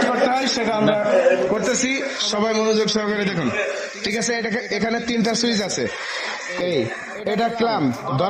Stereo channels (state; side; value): identical; both; correlation 1.00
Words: করতে হয় সেটা আমরা করতেছি। সবাই মনোযোগ সহকারে দেখুন। ঠিক আছে, এখানে 3টা সুইচ আছে। এটা ক্লাম